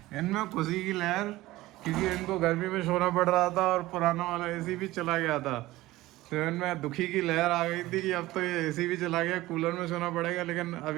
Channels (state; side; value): quieter; left; 17.6 dB